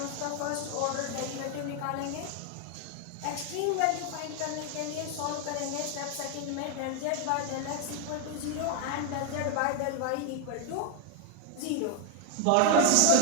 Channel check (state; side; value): different; both; correlation 0.00